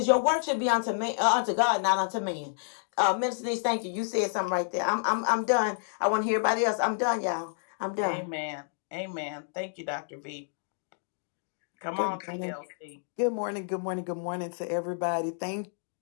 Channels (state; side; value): silent; right; digital silence